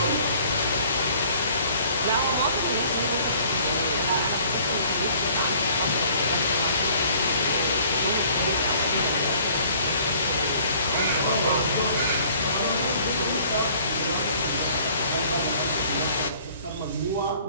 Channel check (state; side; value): inverted; both; correlation -0.55